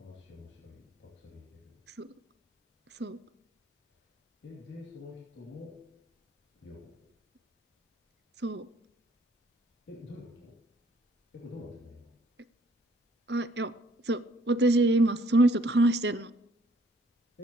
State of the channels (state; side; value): normal; both; correlation 0.62